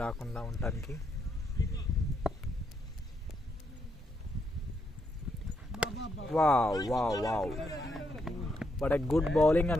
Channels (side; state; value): both; normal; correlation 0.78